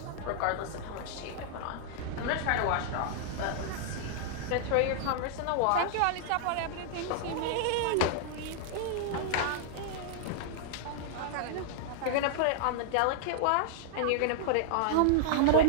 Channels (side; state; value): both; different; correlation -0.01